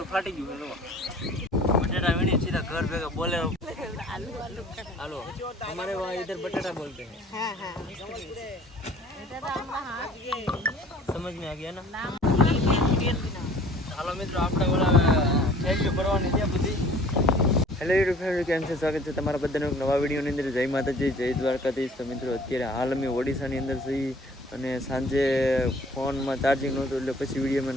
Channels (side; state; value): both; normal; correlation 0.51